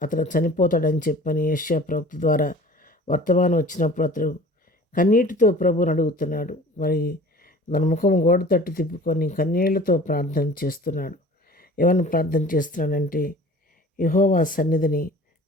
అతను చనిపోతాడని చెప్పని యెషయా ప్రవక్త ద్వారా వర్తమానం వచ్చినప్పుడు అతడు కన్నీటితో ప్రభువుని అడుగుతున్నాడు. మరి తన ముఖం గోడ తట్టు తిప్పుకొని కన్నీళ్లతో ప్రార్థన చేస్తున్నాడు. ఏమని ప్రార్థన చేస్తున్నాడంటే, యెహోవా సన్నిధిని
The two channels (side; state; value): both; normal; correlation 0.45